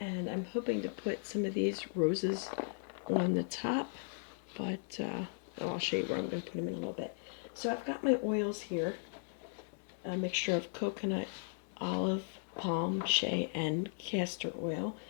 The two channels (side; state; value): right; silent; digital silence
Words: I'm hoping to put some of these roses on the top, but I'll show you where I'm going to put them in a little bit. So I've got my oils here, a mixture of coconut, olive, palm, shea, and castor oil,